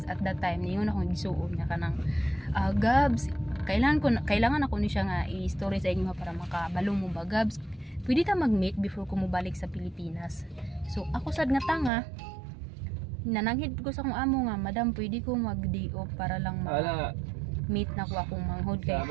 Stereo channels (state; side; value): drops out; left; at 11.9 s